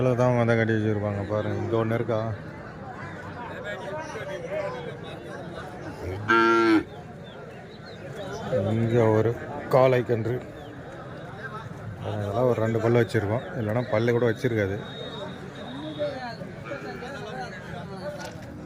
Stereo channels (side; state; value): both; identical; correlation 1.00